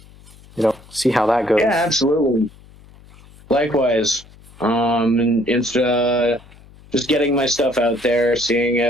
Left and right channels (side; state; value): left; noise; hum, 24 dB below the sound